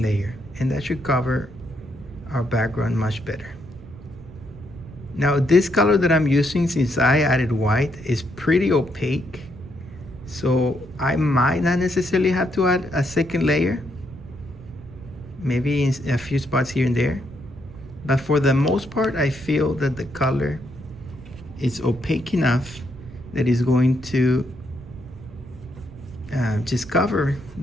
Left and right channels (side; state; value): right; noise; rumble, 17 dB below the sound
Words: layer, and that should cover our background much better. Now this color that I'm using, since I added white, is pretty opaque, so I might not necessarily have to add a second layer, maybe in a few spots here and there, but for the most part I feel that the color is opaque enough that is going to just cover